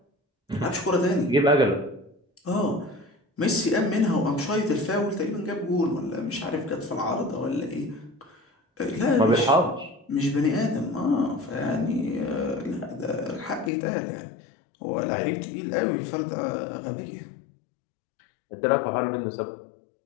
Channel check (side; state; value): right; drops out; at 13.7 s